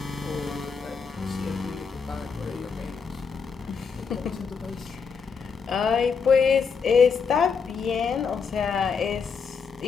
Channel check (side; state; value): right; quieter; 5.7 dB